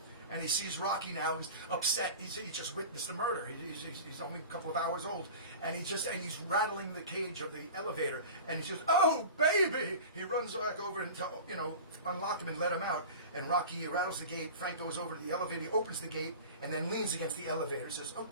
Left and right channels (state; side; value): inverted; both; correlation -0.35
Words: And he sees Rocky now. He's upset. He just witnessed a murder. He's only a couple of hours old, and he's rattling the cage of the elevator. And he says, "Oh, baby!" He runs back over and unlock him and let him out. And Rocky rattles the gate. Frank goes over to the elevator. He opens the gate and then leans against the elevator. Says, "Oh,